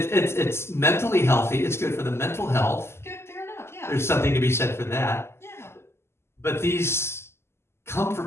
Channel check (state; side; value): late; right; 0.12 ms